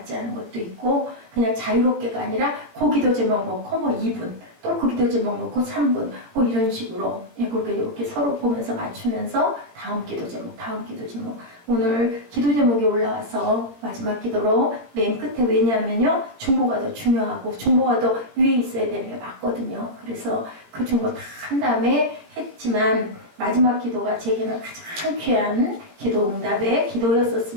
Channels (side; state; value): left; late; 18 ms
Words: 않은 것도 있고 그냥 자유롭게가 아니라 그 기도 제목 놓고 뭐 2분 또 그 기도 제목 놓고 3분 뭐 이런 식으로 그렇게 이렇게 서로 보면서 맞추면서 다음 기도 제목 오늘 기도 제목이 올라와서 마지막 기도로 맨 끝에 왜냐하면요 중보가 더 중요하고 중보가 더 위에 있어야 되는 게 맞거든요. 그래서 그 중보 다 한 다음에 했지만 마지막 기도가 제게는 가장 귀한 기도 응답의